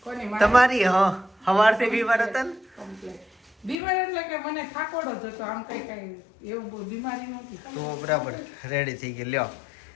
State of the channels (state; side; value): drops out; right; at 3.8 s